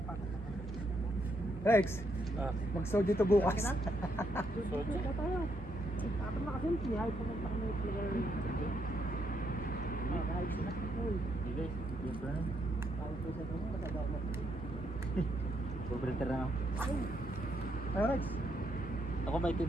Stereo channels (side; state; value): both; normal; correlation 0.76